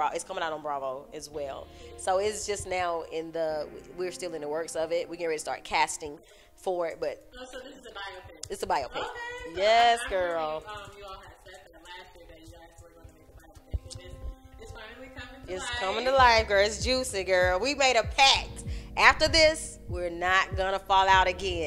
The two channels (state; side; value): identical; both; correlation 1.00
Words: It's coming out on Bravo as well. So it's just now we're still in the works of it. We're getting ready to start casting for it. But so this is a biopic. It's a biopic. Okay. Yes, so girl. You all had said that last year that you guys were going to make a biopic. And it's finally coming to life. It's coming to life, girl. It's juicy, girl. We made a pact. After this, we're not going to fall out